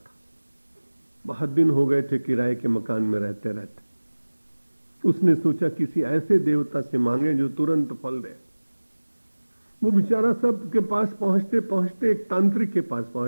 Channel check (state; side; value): inverted; both; correlation -1.00